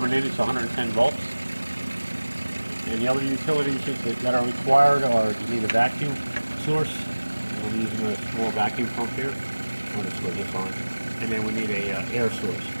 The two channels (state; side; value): inverted; both; correlation -1.00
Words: in. It's 110 volts. And the other utilities that are required are you need a vacuum source. I'm using a small vacuum pump here. I'm going to switch this on. And then we need a air source.